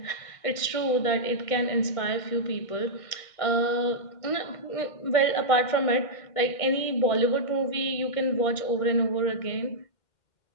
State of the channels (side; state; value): right; late; 1.6 ms